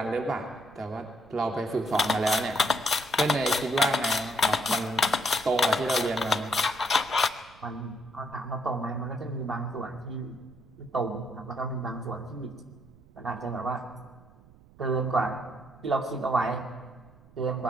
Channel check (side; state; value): right; noise; rumble, 25 dB below the sound